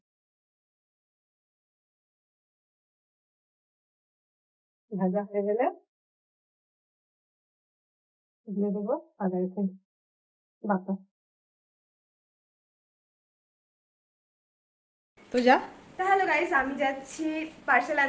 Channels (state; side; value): identical; both; correlation 1.00